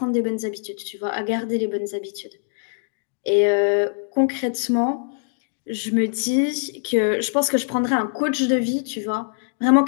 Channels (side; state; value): right; silent; digital silence